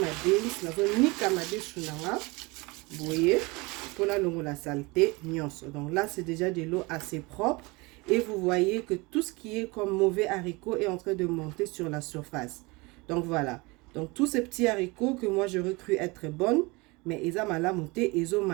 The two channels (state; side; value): quieter; left; 25.4 dB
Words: beans. La zone ni kamadesu nanga. Vous voyez, pour la saleté, nyonso. Donc là, c'est déjà de l'eau assez propre. Et vous voyez que tout ce qui est comme mauvais haricots est en train de monter sur la surface. Donc voilà. Donc tous ces petits haricots que moi je recrue être bonnes, mais ils ont mal monté, ils ont